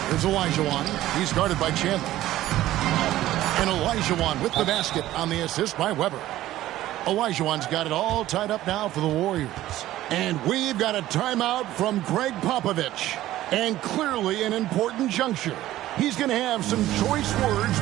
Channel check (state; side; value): quieter; left; 14.7 dB